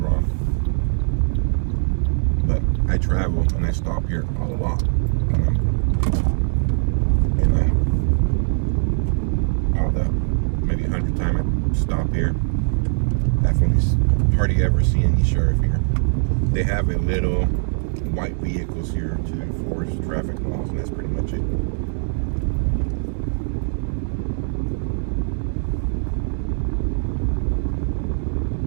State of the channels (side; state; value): left; silent; digital silence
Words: But I travel and I stop here a lot. And all the maybe 100 times I stop here, definitely hardly ever see any sheriff here. They have a little white vehicles here to enforce traffic laws, and that's pretty much it.